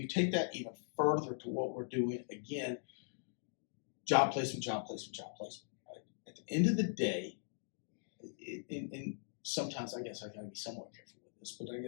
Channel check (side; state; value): right; silent; digital silence